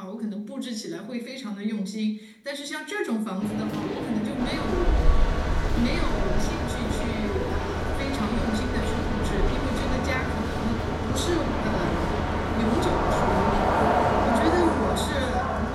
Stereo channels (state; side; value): identical; both; correlation 1.00